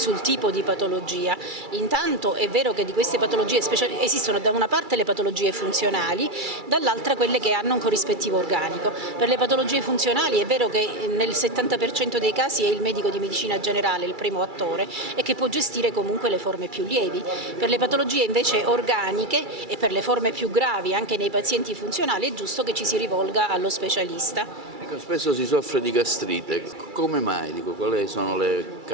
tipo di patologia. Intanto è vero che di queste patologie esistono da una parte le patologie funzionali, dall'altra quelle che hanno un corrispettivo organico. Per le patologie funzionali è vero che nel 70% dei casi è il medico di medicina generale il primo attore e che può gestire comunque le forme più lievi. Per le patologie invece organiche e per le forme più gravi anche nei pazienti funzionali è giusto che ci si rivolga allo specialista. Ecco, spesso si soffre di gastrite, come mai? Quali sono le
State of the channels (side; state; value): left; late; 2.3 ms